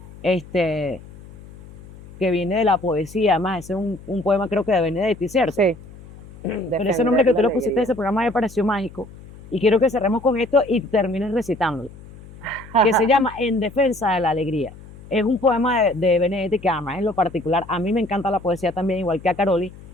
que viene de la poesía, además, ese es un poema creo que de Benedetti, ¿cierto? Sí. Pero ese nombre que tú le pusiste a ese programa me pareció mágico. Y quiero que cerremos con esto y termines recitándolo. Que se llama En defensa de la alegría. Es un poema de Benedetti que además en lo particular, a mí me encanta la poesía también, igual que a Caroli,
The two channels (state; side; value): noise; left; hum, 19 dB below the sound